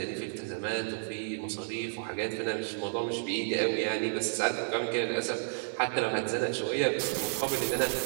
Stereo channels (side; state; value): left; silent; digital silence